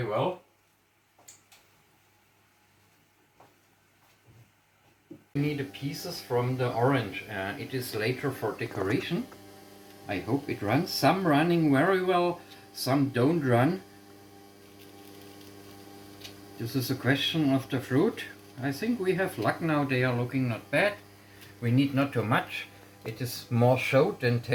well. We need the pieces from the orange. It is later for decoration. I hope it runs. Some running very well, some don't run. This is a question of the fruit. I think we have luck now. They are looking not bad. We need not too much. It is more show than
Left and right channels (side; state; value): both; identical; correlation 1.00